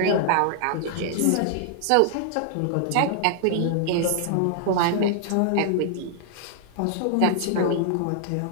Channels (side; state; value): both; different; correlation -0.01